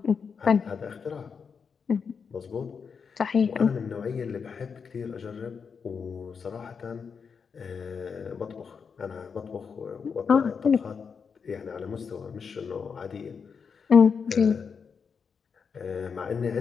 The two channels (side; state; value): right; quieter; 6.0 dB